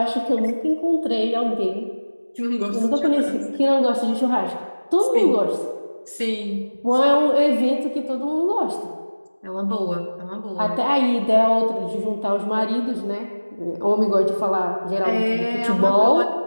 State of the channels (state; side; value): inverted; both; correlation -1.00